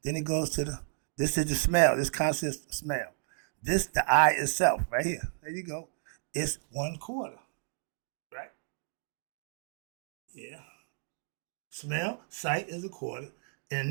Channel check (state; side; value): silent; left; digital silence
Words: Then it goes to this is the smell. This consists of smell. This, the I itself, right here. There you go. It's 1/4. Right? Yeah. Smell, sight is 1/4.